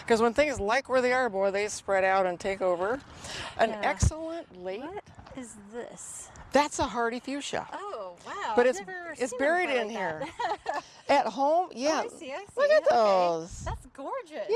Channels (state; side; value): identical; both; correlation 1.00